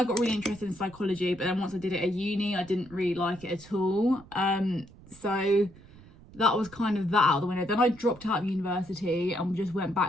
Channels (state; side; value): noise; right; rumble, 22 dB below the sound